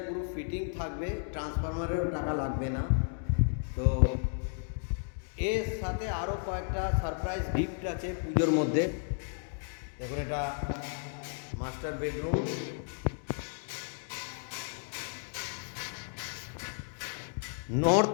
পুরো ফিটিং থাকবে, ট্রান্সফরমারেরও টাকা লাগবে না। তো এর সাথে আরও কয়েকটা সারপ্রাইজ গিফট আছে পুজোর মধ্যে। দেখুন, এটা master bedroom,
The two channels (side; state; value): right; silent; 56 dB below the other